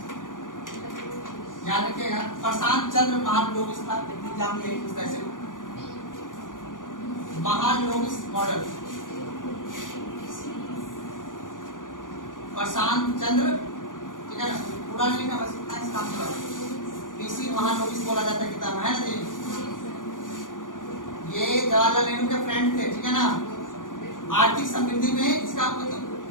याद रखिएगा। प्रशांत चंद्र महालनोबिस था, एग्जाम यही पूछता है। महालनोबिस मॉडल, प्रशांत चंद्र, ठीक है ना, पूरा नहीं लिखना, बस इतना इस काम से पीसी महालनोबिस बोला जाता है किताब, है ना जी। ये जवाहरलाल नेहरू के फ्रेंड थे, ठीक है ना। आर्थिक समृद्धि में इसका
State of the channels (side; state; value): right; late; 0.88 ms